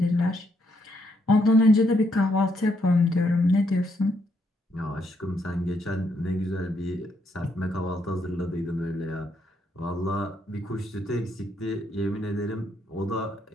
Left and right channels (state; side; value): normal; both; correlation 0.75